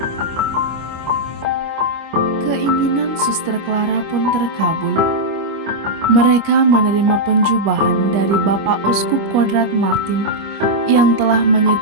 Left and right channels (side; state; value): left; late; 25 ms